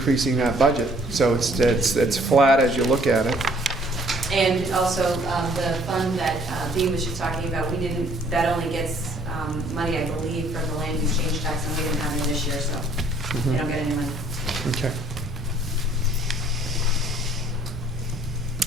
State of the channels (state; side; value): normal; both; correlation 0.60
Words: that budget. So it's flat as you look at it. And also, the fund that Dee was just talking about, that only gets money, I believe, from the land use change tax, and we didn't have it this year, so they don't get any money. Okay.